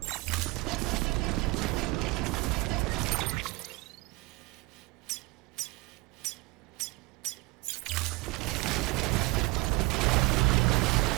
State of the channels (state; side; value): quieter; left; 24.3 dB